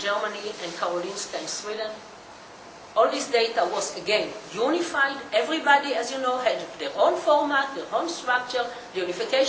and Karolinska in Sweden. All this data was, again, unified. Everybody, as you know, had their own format, their own structure. The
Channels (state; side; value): identical; both; correlation 1.00